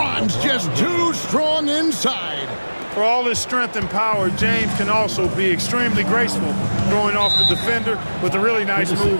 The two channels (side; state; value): both; inverted; correlation -1.00